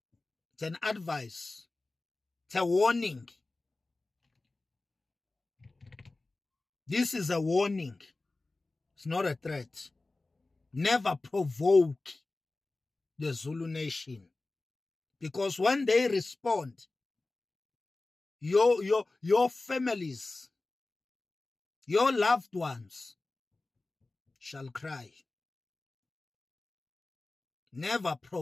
It's an advice. It's a warning. This is a warning. It's not a threat. Never provoke the Zulu nation. Because when they respond, your families, your loved ones shall cry. Never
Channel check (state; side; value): quieter; right; 3.2 dB